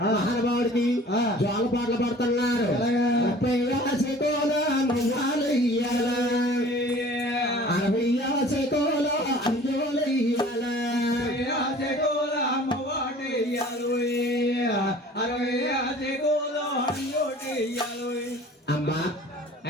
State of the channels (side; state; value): both; normal; correlation 0.47